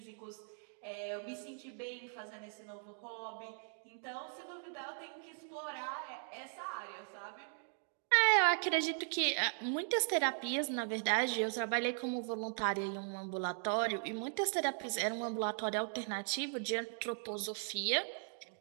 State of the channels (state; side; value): silent; left; 52 dB below the other